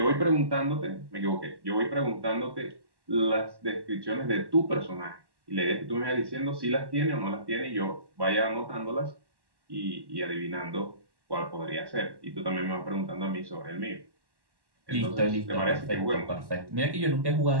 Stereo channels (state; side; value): late; left; 1.1 ms